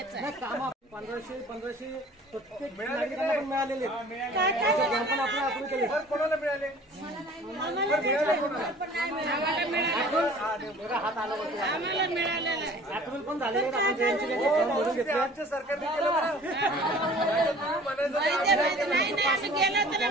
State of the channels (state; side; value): normal; both; correlation 0.48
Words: आहे. काम 1500 प्रत्येक नागरिकांना पण मिळालेले पण आपलं अप्रूव्ह केले. कोणाला मिळाले हात आला आम्हाला मिळालेलं आहे. अप्रूव्ह पण झालेले भरून घेतले. आमच्या सरकारने केलं नाही आम्ही गेलो तर